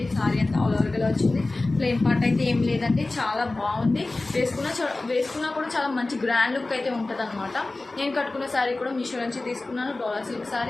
శారీ అంతా ఆల్ ఓవర్గా ఇలా వచ్చింది. ప్లెయిన్ పార్ట్ అయితే ఏం లేదండి, చాలా బాగుంది. వేసుకున్నా కూడా చాలా మంచి గ్రాండ్ లుక్ అయితే ఉంటుంది అనమాట. నేను కట్టుకున్న శారీ కూడా మీషో నుంచి తీసుకున్నాను. డోలా సిల్క్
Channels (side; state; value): right; quieter; 3.1 dB